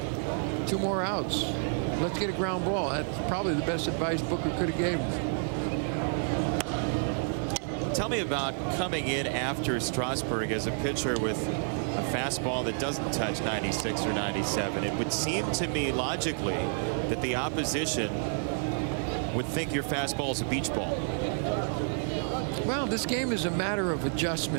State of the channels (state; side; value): silent; left; 58 dB below the other